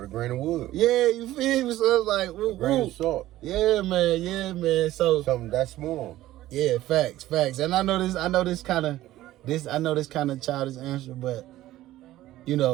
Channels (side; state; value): left; quieter; 15.1 dB